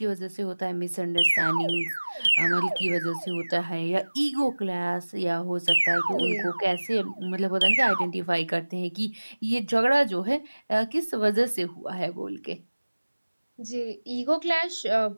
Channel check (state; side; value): inverted; both; correlation -1.00